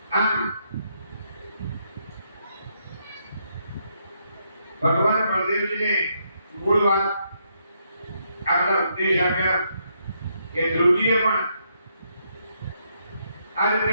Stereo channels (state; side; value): inverted; both; correlation -0.76